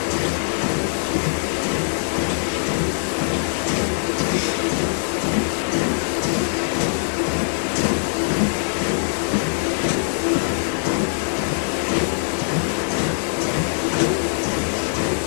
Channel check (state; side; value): silent; right; digital silence